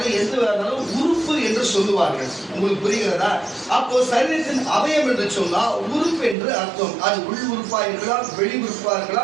எந்த உறுப்பு என்று சொல்லுவார்கள். உங்களுக்கு புரிகிறதா? அப்போ சரீரத்தின் அவயம் என்று சொன்னா உறுப்பு என்று அர்த்தம். அது உள் உறுப்பா இருக்கலாம், வெளி உறுப்பா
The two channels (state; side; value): drops out; left; at 6.4 s